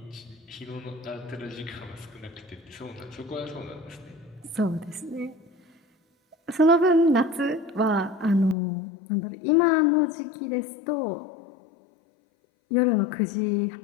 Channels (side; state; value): right; drops out; at 8.6 s